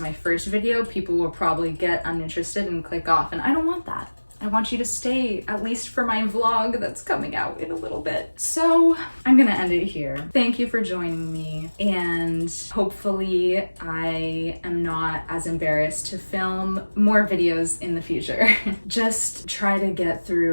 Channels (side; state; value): both; inverted; correlation -1.00